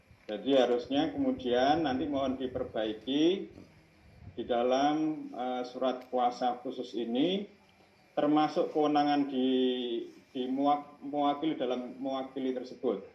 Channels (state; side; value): identical; both; correlation 1.00